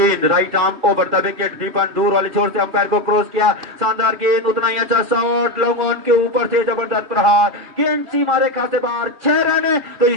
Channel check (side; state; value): left; late; 2.3 ms